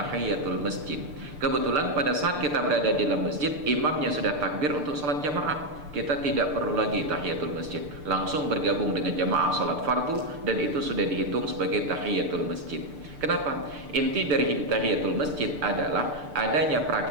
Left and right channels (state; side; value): late; left; 6.8 ms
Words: masjid. Kebetulan pada saat kita berada di dalam masjid, imamnya sudah takbir untuk sholat jamaah. Kita tidak perlu lagi tahiyatul masjid, langsung bergabung dengan jamaah sholat fardu, dan itu sudah dihitung sebagai tahiyatul masjid. Kenapa? Inti dari tahiyatul masjid adalah adanya